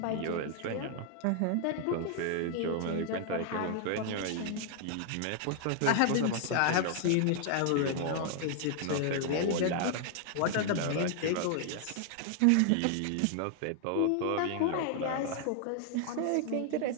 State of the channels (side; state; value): both; different; correlation 0.00